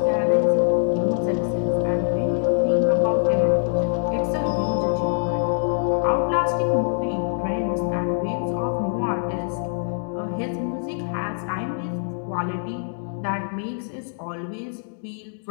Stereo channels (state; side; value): silent; right; digital silence